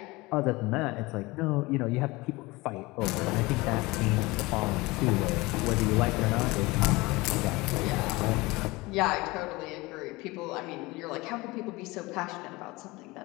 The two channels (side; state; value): right; quieter; 22.3 dB